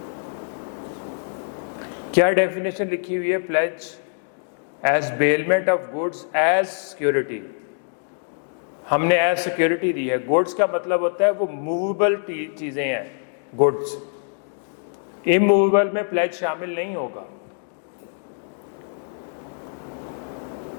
क्या डेफिनेशन लिखी हुई है? Pledge as bailment of goods as security. हमने एज सिक्योरिटी दी है। गुड्स का मतलब होता है वो मूवेबल चीजें हैं, गुड्स। इमूवेबल में प्लेज शामिल नहीं होगा।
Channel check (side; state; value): right; silent; digital silence